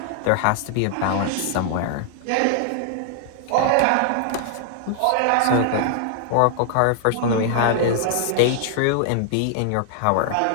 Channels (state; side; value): different; both; correlation 0.00